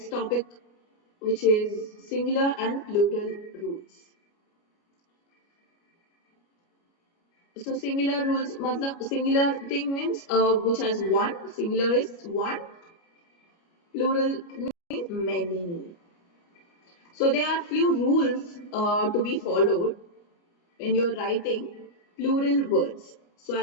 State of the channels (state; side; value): late; right; 29 ms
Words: topic, which is singular and plural rules. So singular rules, matlab singular thing means which has one. Singular is one. Plural means many. So there are few rules to be followed when you're writing plural words. So